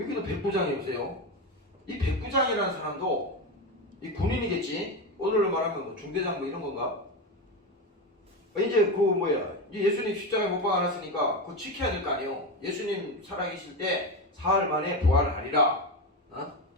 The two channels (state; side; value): normal; both; correlation 0.17